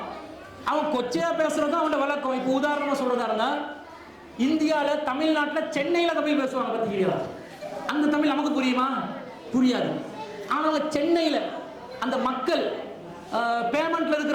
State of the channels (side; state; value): both; identical; correlation 1.00